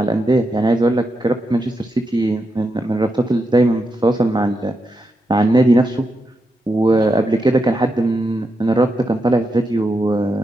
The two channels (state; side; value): normal; both; correlation 0.85